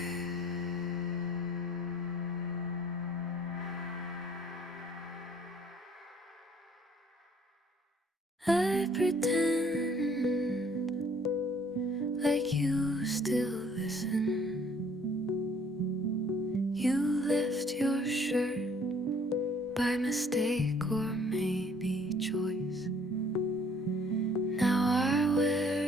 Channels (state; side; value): normal; both; correlation 0.59